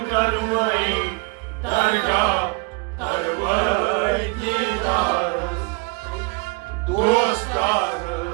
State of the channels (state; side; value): quieter; left; 30.9 dB